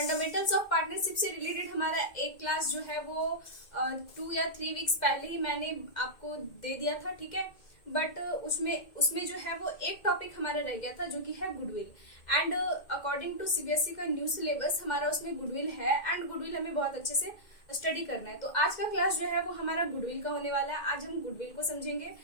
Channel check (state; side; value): late; right; 2.0 ms